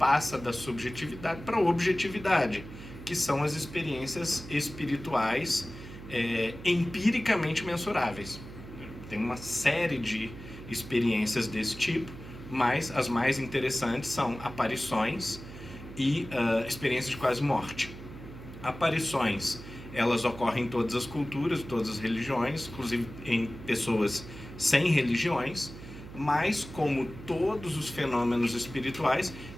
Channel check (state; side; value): noise; right; hum, 14 dB below the sound